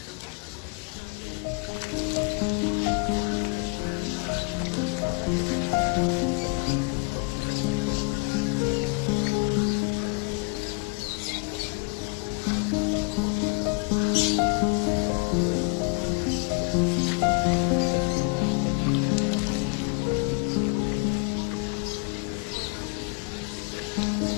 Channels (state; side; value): quieter; right; 32.6 dB